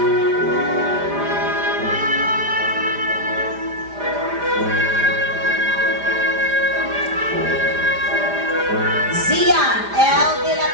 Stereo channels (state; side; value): late; left; 5.0 ms